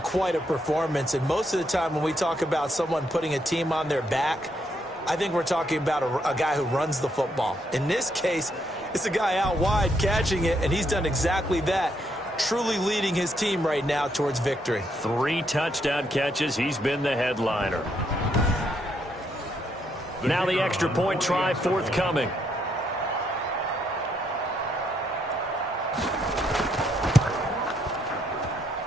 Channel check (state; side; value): normal; both; correlation 0.75